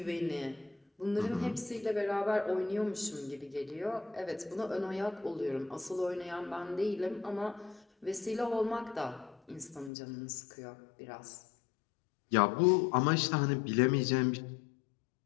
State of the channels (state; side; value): drops out; right; at 9.9 s